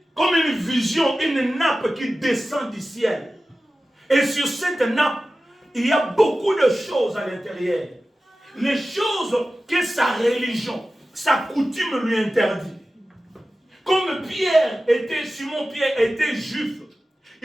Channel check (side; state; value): both; normal; correlation 0.95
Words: comme une vision, une nappe qui descend du ciel. Et sur cette nappe, il y a beaucoup de choses à l'intérieur. Les choses que sa religion, sa coutume lui interdit. Comme Simon Pierre était juif,